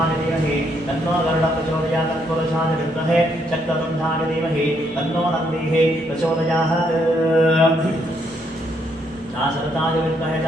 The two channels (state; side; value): normal; both; correlation 0.73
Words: धीमहि तन्नो गरुडः प्रचोदयात् तत्पुरुषाय विद्महे शक्ततुण्डाय धीमहि तन्नो नन्दिः प्रचोदयात् शरताय विद्महे